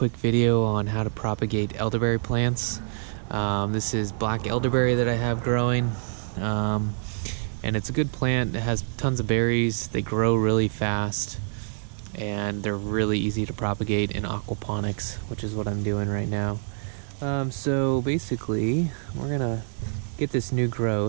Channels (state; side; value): silent; left; 61 dB below the other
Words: video on how to propagate elderberry plants. This is black elderberry that I have growing, and it's a good plant. It has tons of berries, they grow really fast, and they're really easy to propagate in aquaponics, which is what I'm doing right now. So basically, we're gonna get this new